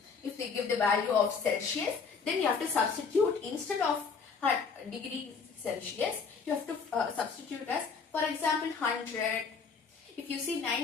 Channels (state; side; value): quieter; right; 5.4 dB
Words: If they give the value of Celsius, then you have to substitute, instead of degrees Celsius, you have to substitute as, for example, 100. If you see